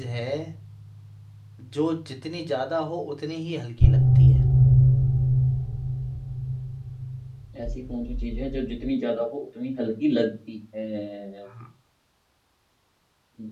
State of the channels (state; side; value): identical; both; correlation 1.00